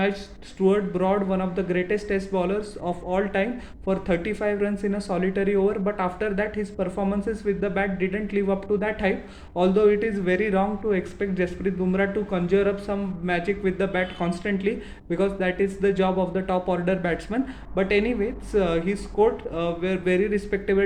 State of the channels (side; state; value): both; identical; correlation 1.00